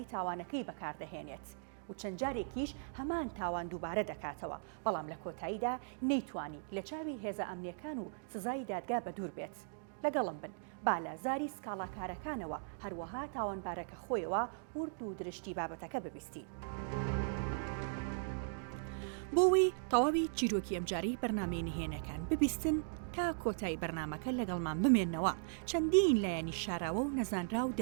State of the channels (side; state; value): left; silent; digital silence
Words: تاوانەکەی بەکاردەهێنێت و چەند جارێکیش هەمان تاوان دووبارە دەکاتەوە، بەڵام لە کۆتاییدا نەیتوانی لە چاوی هێزە ئەمنیەکان و سزای دادگا بەدوور بێت. لەگەڵم بن بالازاری سکاڵاکارەکانەوە هەروەها تاوانبارەکە خۆیەوە ورد و درشتی بابەتەکە ببیستی. بۆەوەی تەواوی چیرۆکی ئەمجاری بەرنامەی نهێنەکان ببیستن تا کۆتایی بەرنامەکە لەگەڵمان بمێننەوە، چەندین لایەنی شاراوە و نەزانرا و